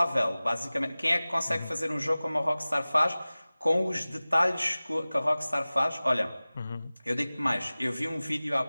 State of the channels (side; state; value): both; inverted; correlation -0.98